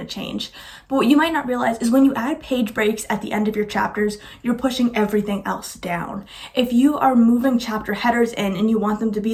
change. But what you might not realize is when you add page breaks at the end of your chapters, you're pushing everything else down. If you are moving chapter headers in and you want them to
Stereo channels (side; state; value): both; identical; correlation 1.00